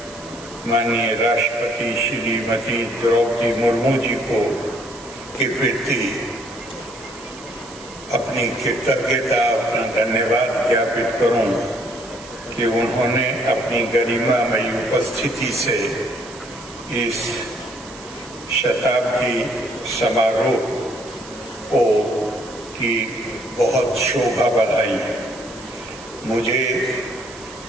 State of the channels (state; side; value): noise; right; hiss, 19 dB below the sound